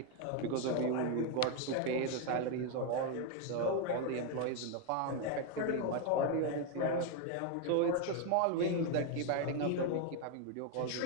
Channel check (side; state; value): both; different; correlation 0.01